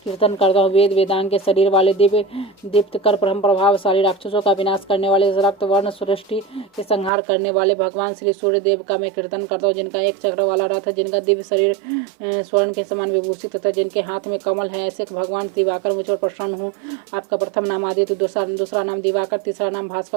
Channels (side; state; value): left; drops out; at 7.1 s